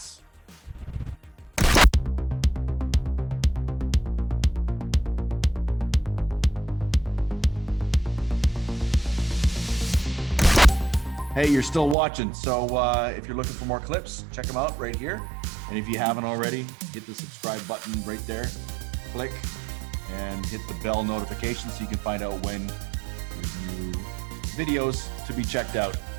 Hey, you're still watching, so if you're looking for more clips, check them out right here. And if you haven't already, hit the subscribe button right there, click, and hit the bell notification so you can find out when there's new videos to be checked out.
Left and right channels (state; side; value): drops out; left; at 12.0 s